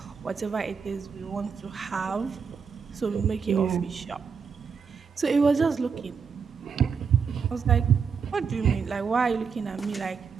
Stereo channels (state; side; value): quieter; left; 6.0 dB